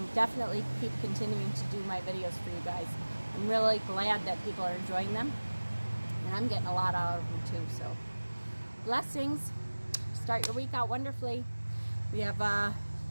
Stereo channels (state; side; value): inverted; both; correlation -1.00